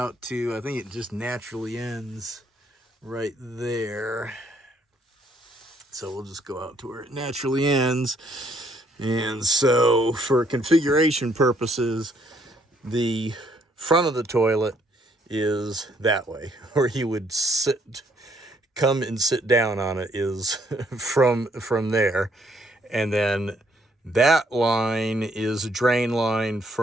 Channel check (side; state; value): both; normal; correlation 0.68